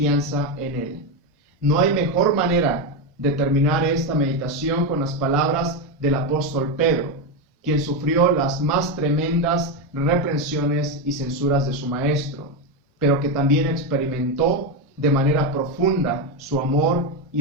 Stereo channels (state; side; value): normal; both; correlation 0.10